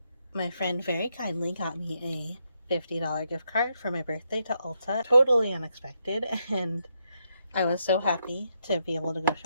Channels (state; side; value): inverted; both; correlation -0.79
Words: My friend very kindly got me a $50 gift card for my birthday to Ulta. Totally unexpected, and I was so happy to be able to go